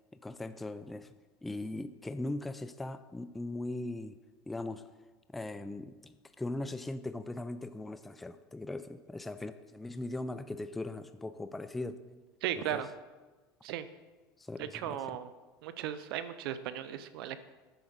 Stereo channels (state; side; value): normal; both; correlation 0.61